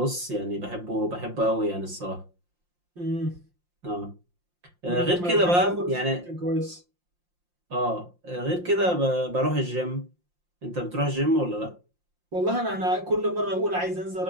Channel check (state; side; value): late; left; 5.7 ms